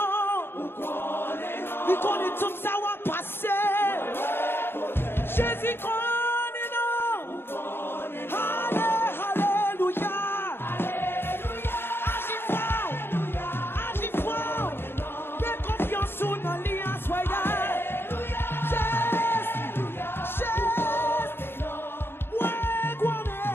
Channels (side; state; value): right; late; 0.11 ms